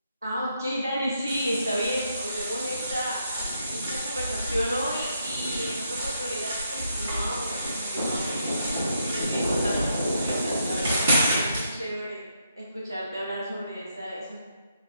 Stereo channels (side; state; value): both; inverted; correlation -0.77